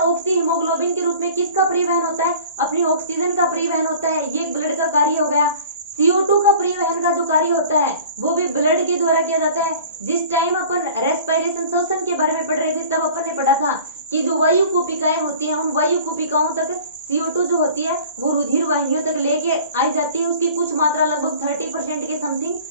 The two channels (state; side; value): inverted; both; correlation -0.45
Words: हीमोग्लोबिन के रूप में किसका परिवहन होता है? अपनी ऑक्सीजन का परिवहन होता है। ये ब्लड का कार्य हो गया। CO2 का परिवहन का जो कार्य होता है वो भी ब्लड के द्वारा किया जाता है। जिस टाइम अपन रेस्पिरेशन, श्वसन के बारे में पढ़ रहे थे तब अपन ने पढ़ा था कि जो वायु कूपिकाएं होती हैं उन वायु कूपिकाओं तक CO2 जो होती है वो रुधिर वाहिनियों तक लेके आई जाती है। उसकी कुछ मात्रा लगभग 30% के समथिंग।